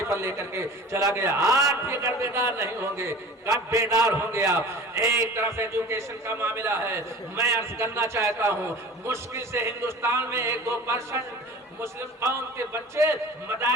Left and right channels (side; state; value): both; normal; correlation 0.40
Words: پر لے کر کے چلا گیا۔ آج بھی اگر بیدار نہیں ہوں گے، کب بیدار ہوں گے آپ؟ ایک طرف ایجوکیشن کا معاملہ ہے، میں عرض کرنا چاہتا ہوں مشکل سے ہندوستان میں 1-2% مسلم قوم کے بچے